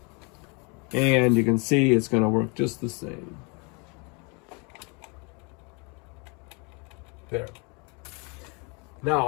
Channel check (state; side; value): quieter; right; 31.9 dB